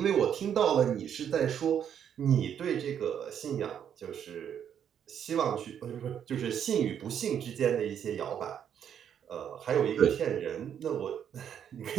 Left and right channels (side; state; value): left; quieter; 8.8 dB